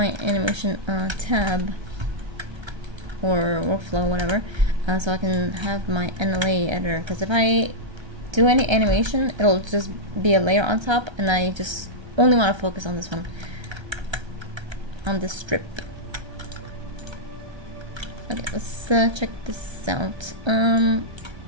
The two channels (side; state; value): left; late; 1.3 ms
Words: animation tab or workflow, whatever, so I can have my NLA editor. Because if I do any animation, it'll just be a layer on top, and I just only want to focus on this one, on this strip. Okay, let's check this out.